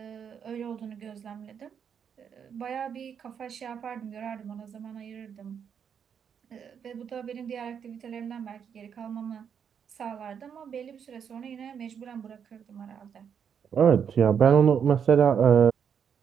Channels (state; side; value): quieter; left; 7.6 dB